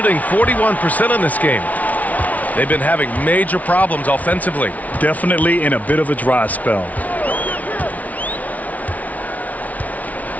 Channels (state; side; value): late; right; 0.072 ms